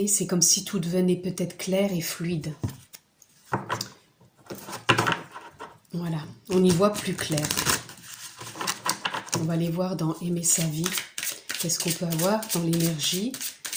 C'est comme si tout devenait peut-être clair et fluide. Voilà, on y voit plus clair. On va aller voir dans Aimer sa vie. Qu'est-ce qu'on peut avoir dans l'énergie,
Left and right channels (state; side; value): identical; both; correlation 1.00